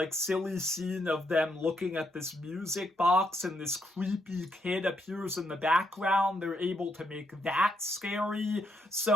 silly scene of them looking at this music box and this creepy kid appears in the background. They're able to make that scary.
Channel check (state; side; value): normal; both; correlation 0.77